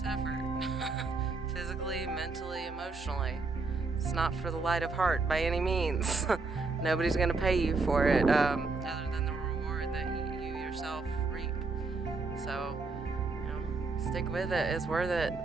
effort. physically, mentally, emotionally. It's not for the light of heart by any means. Nobody's going to pay you for it other than the reward that you yourself reap. So, stick with it. It's worth it.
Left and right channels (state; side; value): quieter; left; 4.0 dB